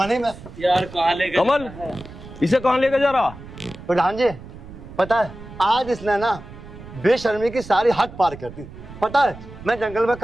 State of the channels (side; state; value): right; noise; rumble, 15 dB below the sound